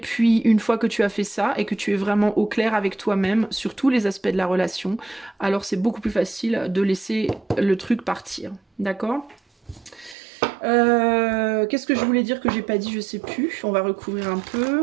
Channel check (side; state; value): left; drops out; at 10.2 s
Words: une fois que tu as fait ça et que tu es vraiment au clair avec toi-même sur tous les aspects de la relation, alors c'est beaucoup plus facile de laisser le truc partir. D'accord ? Qu'est-ce que je voulais dire que j'ai pas dit, je sais plus. On va recouvrir un